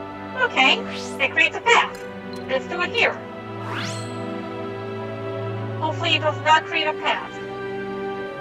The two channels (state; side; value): identical; both; correlation 1.00